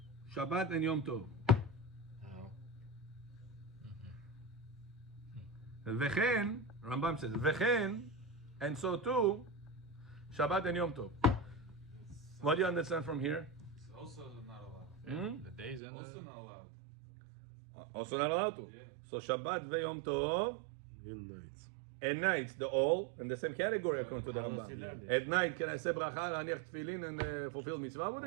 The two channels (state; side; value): drops out; left; at 15.8 s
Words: Shabbat and Yom Tov. How? Vechen, Rambam says, Vechen, and so too, Shabbat and Yom Tov. What do you understand from here? It's also not allowed. the days and Also the... not allowed. Also not allowed to. Yeah. So Shabbat ve Yom Tov, In nights. and nights, the all in the same category according to the How does he Rambam. learn this? At night, can I say bracha, laniach tefillin, and fulfill mitzvah with